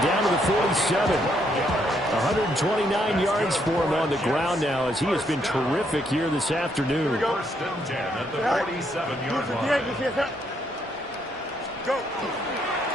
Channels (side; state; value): both; normal; correlation 0.73